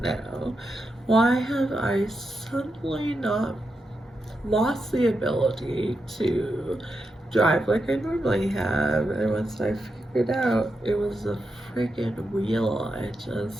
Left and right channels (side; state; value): both; normal; correlation 0.86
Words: Why have I suddenly not lost the ability to drive like I normally have? And once I figured out it was the freaking wheel,